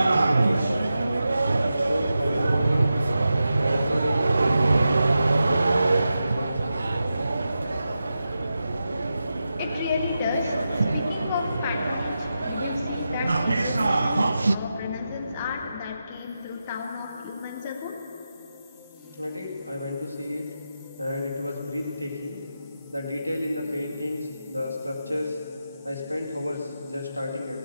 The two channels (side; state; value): both; inverted; correlation -0.90